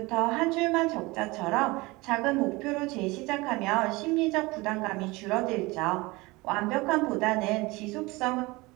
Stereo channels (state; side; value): quieter; left; 22.9 dB